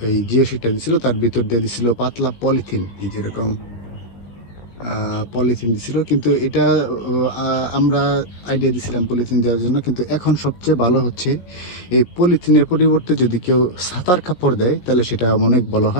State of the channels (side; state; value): right; late; 17 ms